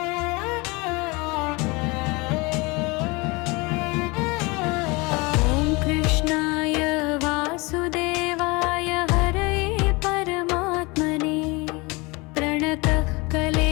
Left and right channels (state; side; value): quieter; right; 26.1 dB